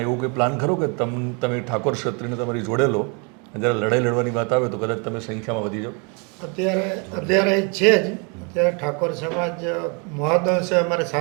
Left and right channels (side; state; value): left; quieter; 34.2 dB